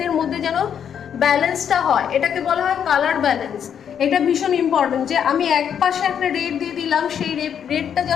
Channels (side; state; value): right; quieter; 8.4 dB